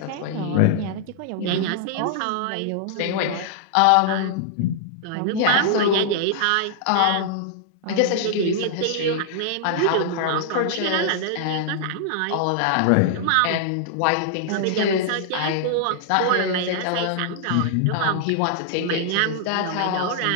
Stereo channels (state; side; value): different; both; correlation -0.01